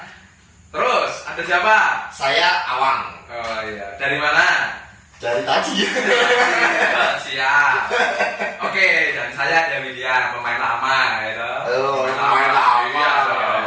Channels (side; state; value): both; identical; correlation 1.00